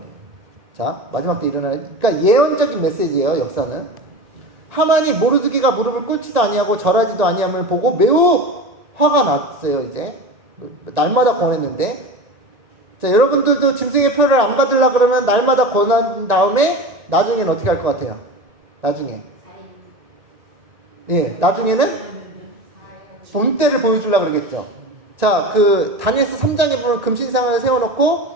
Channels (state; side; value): late; left; 1.9 ms